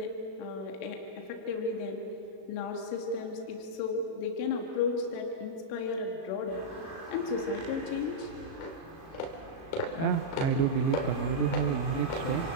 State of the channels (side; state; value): right; late; 37 ms